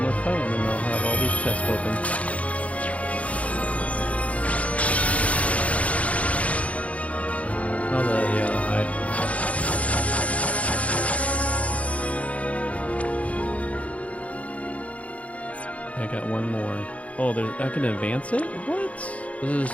more fight, and then I'll have all these chests open. Oh, the hide. I got one more. Oh, I can advance it? What? Does it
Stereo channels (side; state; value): right; late; 0.066 ms